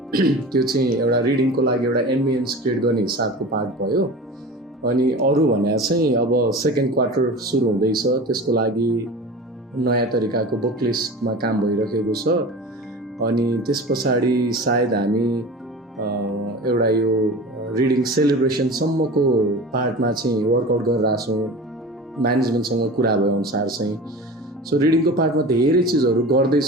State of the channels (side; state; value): both; normal; correlation 0.34